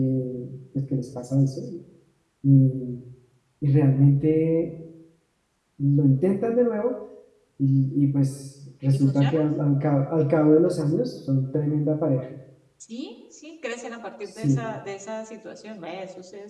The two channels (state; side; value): identical; both; correlation 1.00